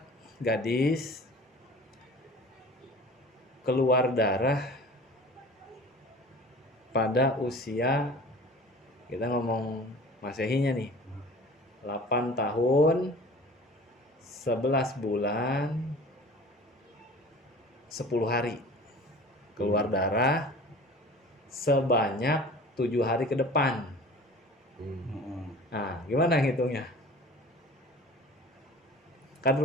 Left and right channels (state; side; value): normal; both; correlation 0.42